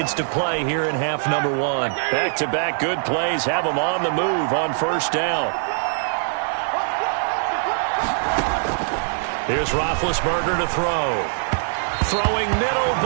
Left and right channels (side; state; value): left; silent; 64 dB below the other